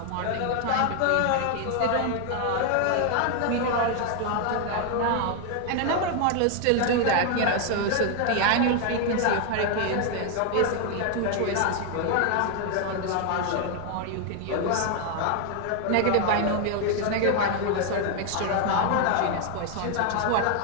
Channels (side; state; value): both; different; correlation 0.00